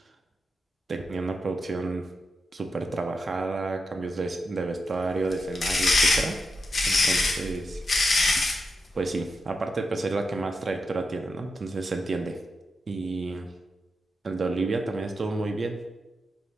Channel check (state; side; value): normal; both; correlation 0.87